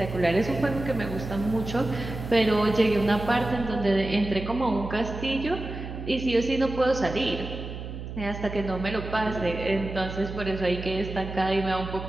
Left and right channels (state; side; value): noise; right; hum, 9 dB below the sound